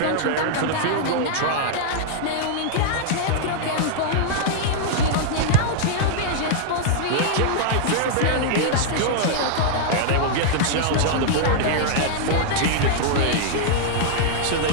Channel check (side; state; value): both; different; correlation -0.01